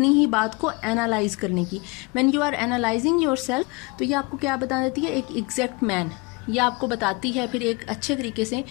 ही बात को एनालाइज करने की। When you are analysing yourself, तो ये आपको क्या बता देती है, एक एग्जैक्ट मैन। ये आपको बताती है फिर एक अच्छे तरीके से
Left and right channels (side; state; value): right; quieter; 27.3 dB